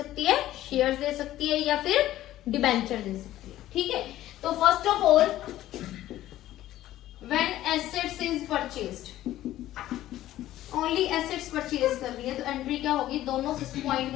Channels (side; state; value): right; quieter; 14.1 dB